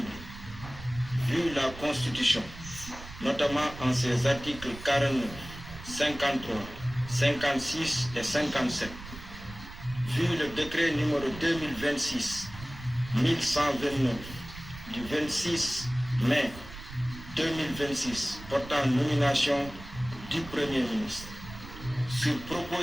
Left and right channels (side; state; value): right; noise; rumble, 14 dB below the sound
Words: vu la Constitution, notamment en ses articles 49, 53, 56 et 57, vu le décret numéro 2026-1129 du 26 mai 2026 portant nomination du Premier ministre, sur